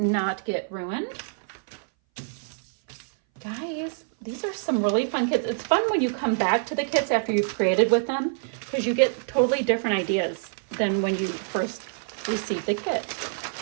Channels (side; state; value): left; silent; 59 dB below the other